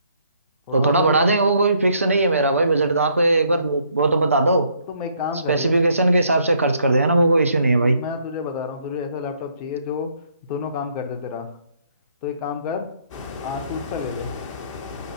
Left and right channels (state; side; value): inverted; both; correlation -0.68